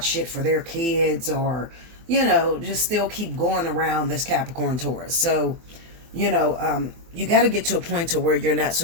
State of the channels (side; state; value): left; late; 24 ms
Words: shit for their kids or, you know, just still keep going around this Capricorn, Taurus. So, you know, you got to get to a point to where you're not